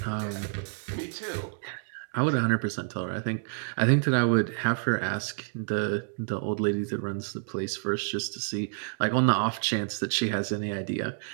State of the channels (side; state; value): left; silent; digital silence